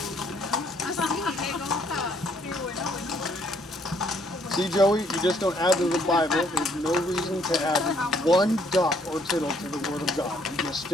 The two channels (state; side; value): normal; both; correlation 0.66